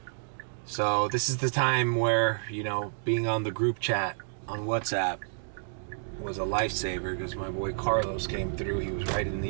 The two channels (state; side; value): silent; left; digital silence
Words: So this is the time where, you know, being on the group chat on WhatsApp was a lifesaver, because my boy Carlos came through. He was right in